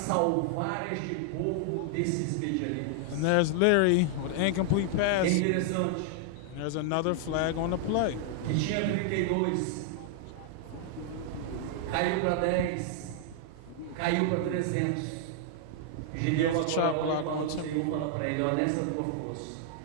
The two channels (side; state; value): both; different; correlation -0.01